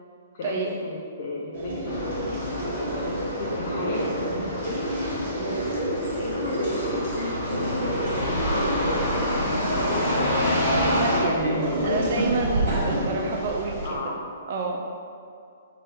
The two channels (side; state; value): both; inverted; correlation -0.52